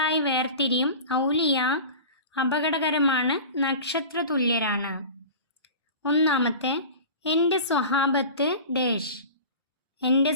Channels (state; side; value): inverted; both; correlation -0.35